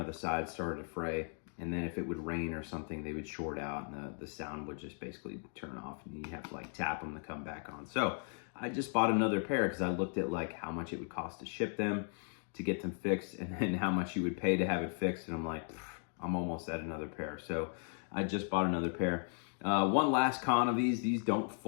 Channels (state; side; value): silent; right; 53 dB below the other